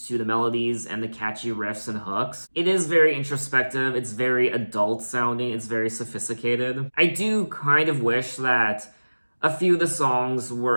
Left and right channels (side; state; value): both; inverted; correlation -1.00